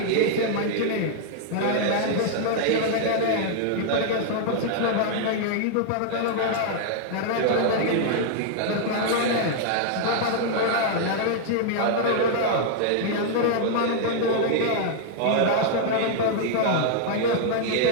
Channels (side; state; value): both; different; correlation -0.01